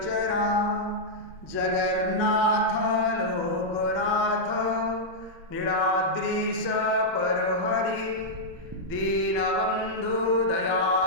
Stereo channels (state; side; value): normal; both; correlation -0.07